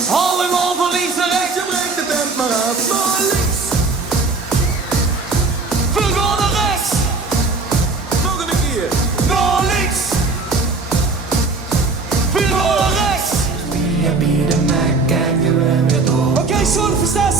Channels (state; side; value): quieter; left; 3.8 dB